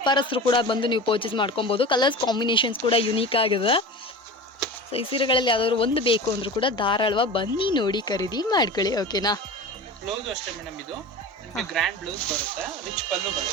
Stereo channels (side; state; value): both; normal; correlation 0.33